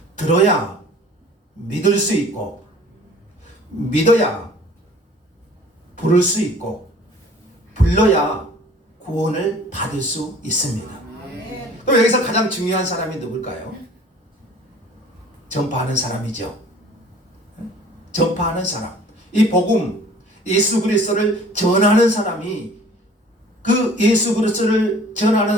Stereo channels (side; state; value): both; normal; correlation 0.50